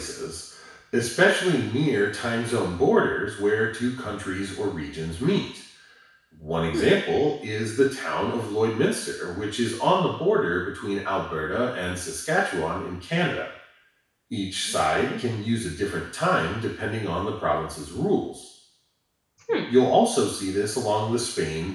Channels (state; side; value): identical; both; correlation 1.00